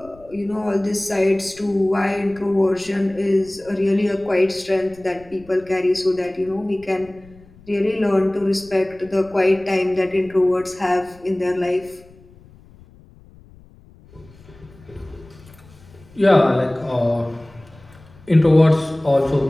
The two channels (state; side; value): noise; left; rumble, 24 dB below the sound